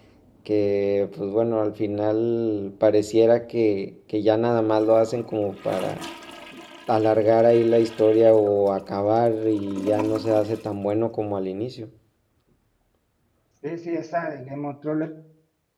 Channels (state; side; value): identical; both; correlation 1.00